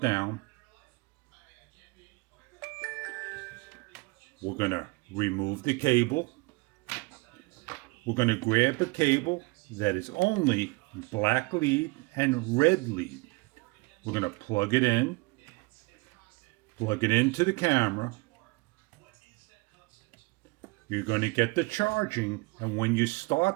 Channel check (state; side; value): quieter; left; 25.2 dB